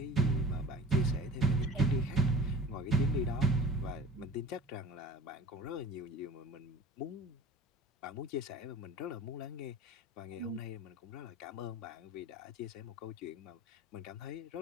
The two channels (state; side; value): normal; both; correlation 0.43